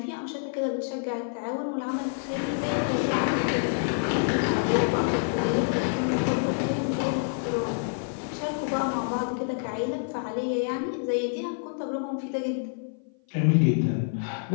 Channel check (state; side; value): silent; right; 56 dB below the other